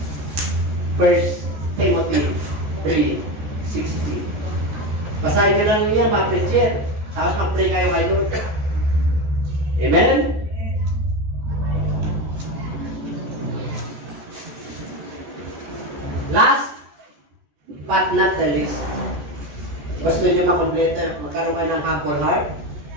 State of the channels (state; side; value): late; left; 14 ms